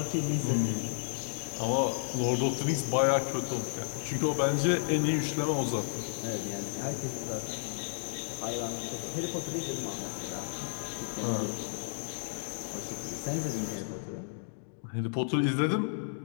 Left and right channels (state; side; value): silent; right; digital silence